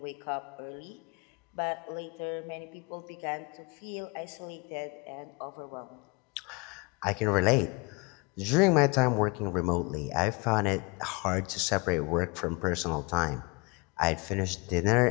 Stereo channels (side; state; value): right; quieter; 28.5 dB